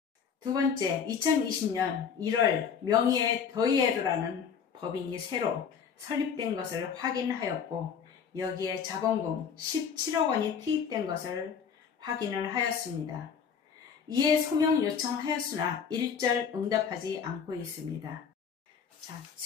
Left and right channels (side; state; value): right; quieter; 6.9 dB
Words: 두 번째, 2020년 1월 명의의 더이에르라는 법인이 새로 설립된 것을 확인하였고 여기에 자본금 17억 원이 투입된 것을 확인을 하였습니다. 이에 소명 요청하였으나 일절 응답하지 않고 있습니다. 자,